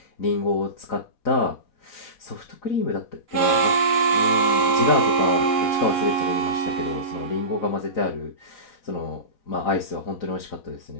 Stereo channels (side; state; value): right; late; 4.1 ms